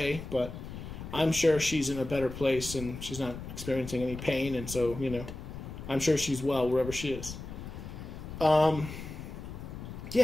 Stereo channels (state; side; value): noise; left; rumble, 10 dB below the sound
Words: but I'm sure she's in a better place and she's not experiencing any pain, and so, I'm sure she's well wherever she is.